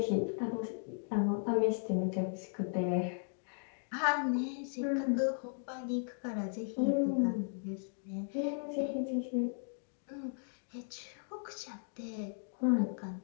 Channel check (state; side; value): silent; right; digital silence